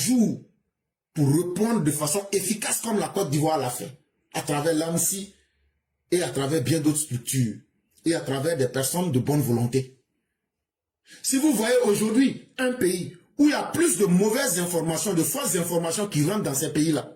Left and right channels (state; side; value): identical; both; correlation 1.00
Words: pour répondre de façon efficace comme la Côte d'Ivoire l'a fait, à travers l'ANSI et à travers bien d'autres structures et à travers des personnes de bonne volonté. Si vous voyez aujourd'hui un pays où il y a plus de mauvaises informations, de fausses informations qui rentrent dans ces pays-là,